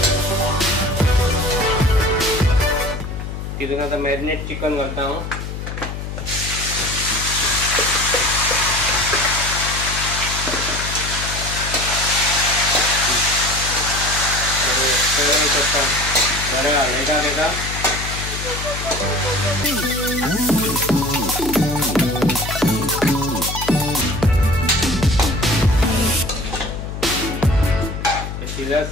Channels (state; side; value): noise; left; hum, 7 dB below the sound